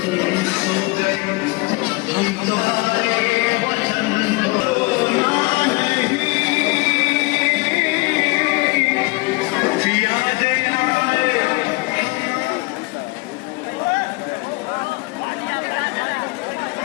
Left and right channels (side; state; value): right; quieter; 24.4 dB